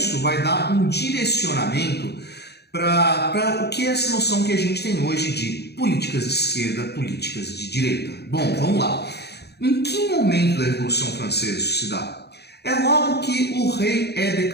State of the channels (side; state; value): right; late; 0.48 ms